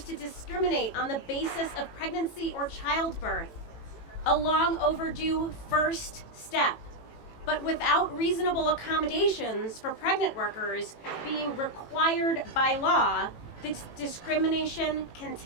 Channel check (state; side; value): late; right; 18 ms